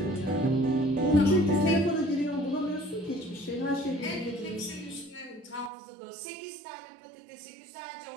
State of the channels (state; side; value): drops out; left; at 5.7 s